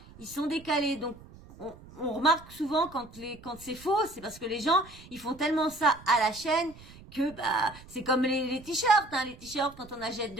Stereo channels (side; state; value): right; noise; rumble, 20 dB below the sound